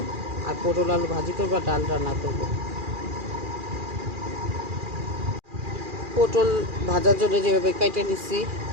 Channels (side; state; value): left; late; 2.4 ms